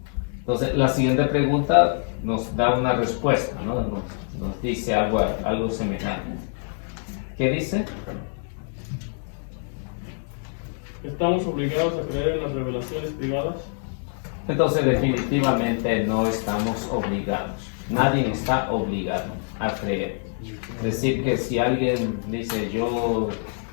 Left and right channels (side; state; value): right; silent; 62 dB below the other